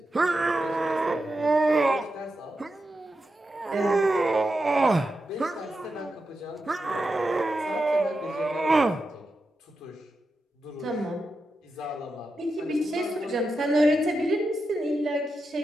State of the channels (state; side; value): normal; both; correlation 0.89